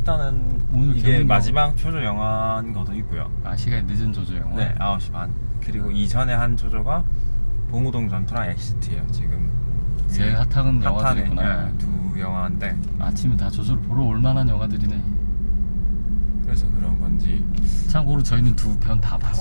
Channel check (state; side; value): inverted; both; correlation -1.00